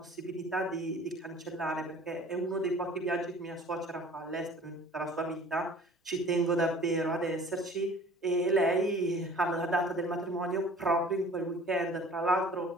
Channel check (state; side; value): normal; both; correlation 0.48